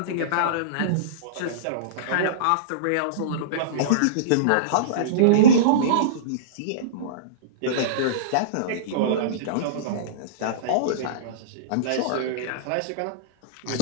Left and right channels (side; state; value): both; different; correlation -0.04